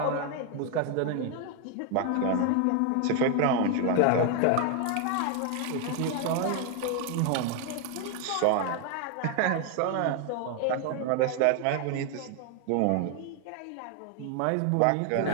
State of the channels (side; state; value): both; different; correlation 0.01